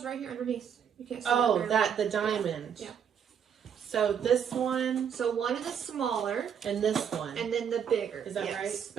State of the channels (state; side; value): quieter; left; 7.9 dB